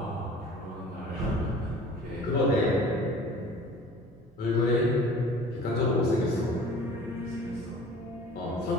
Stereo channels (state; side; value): normal; both; correlation 0.46